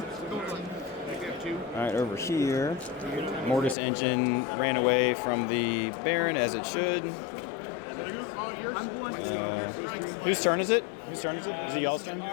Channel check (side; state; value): right; drops out; at 3.8 s